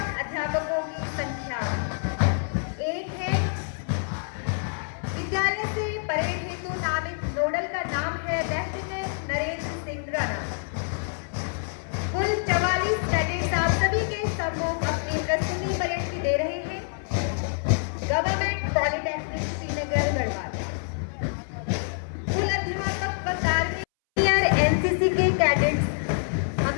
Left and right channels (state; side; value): silent; right; 60 dB below the other